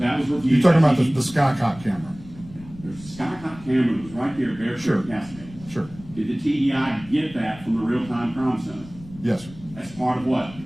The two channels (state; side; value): noise; left; rumble, 19 dB below the sound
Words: was reviewed. You're talking about the Skycop camera? There's a Skycop camera that was right there at Bear Creek Sure. and Cascade. Sure. Did the TDI get that from the real-time crime center? Yes, sir. As part of what?